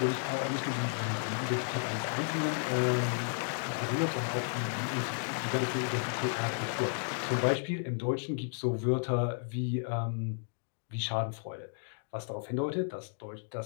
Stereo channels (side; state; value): right; silent; digital silence